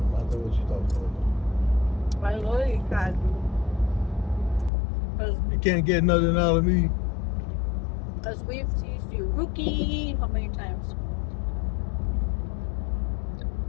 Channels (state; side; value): drops out; right; at 4.7 s